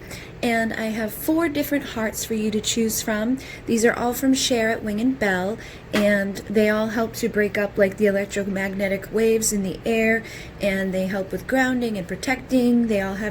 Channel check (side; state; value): both; identical; correlation 1.00